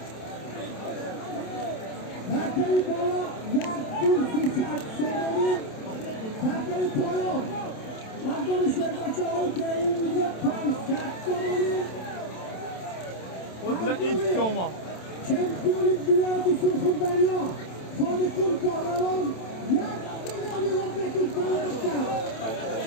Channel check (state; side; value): late; right; 27 ms